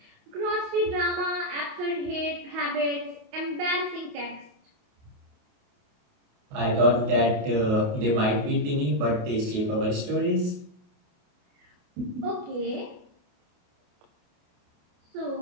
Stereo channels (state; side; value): late; left; 28 ms